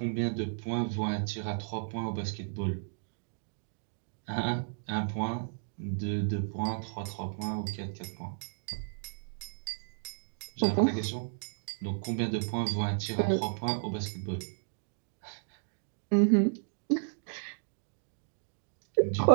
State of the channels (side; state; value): left; silent; digital silence